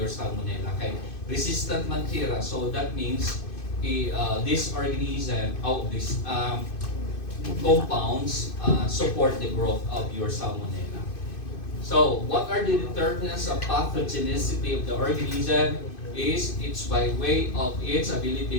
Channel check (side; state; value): right; late; 2.5 ms